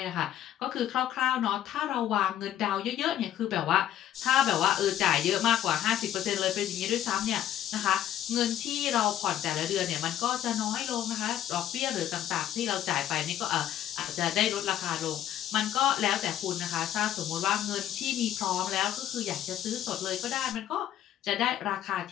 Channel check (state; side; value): quieter; right; 11.4 dB